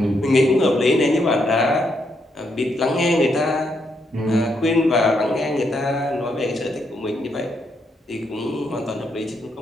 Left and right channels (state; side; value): normal; both; correlation 0.78